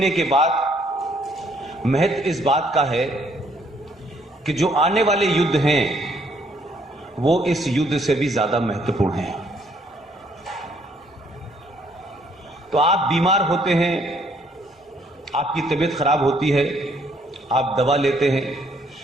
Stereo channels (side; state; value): both; normal; correlation 0.67